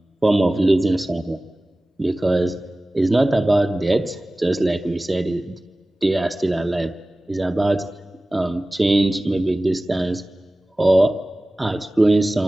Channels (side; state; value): both; normal; correlation 0.97